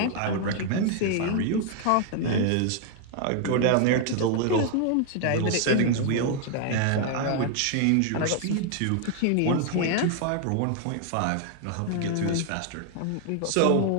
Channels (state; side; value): different; both; correlation 0.00